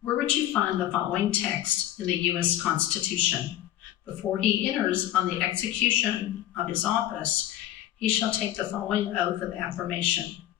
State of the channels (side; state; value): right; quieter; 13.0 dB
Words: Where would you find the following text in the U.S. Constitution? Before he enters on the execution of his office, he shall take the following oath of affirmation.